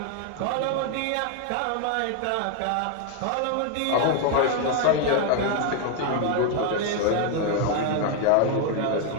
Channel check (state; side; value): different; both; correlation 0.00